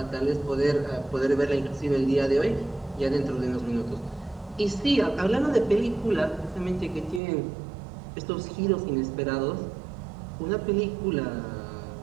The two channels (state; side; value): drops out; left; at 7.2 s